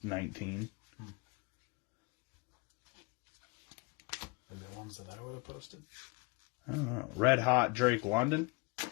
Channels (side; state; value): right; quieter; 29.0 dB